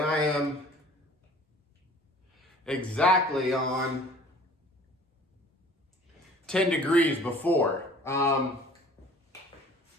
am exactly on 10 degrees before. So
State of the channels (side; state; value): both; normal; correlation 0.49